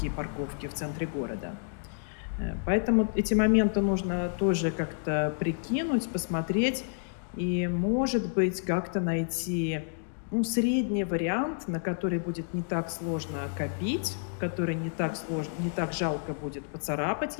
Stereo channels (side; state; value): right; silent; digital silence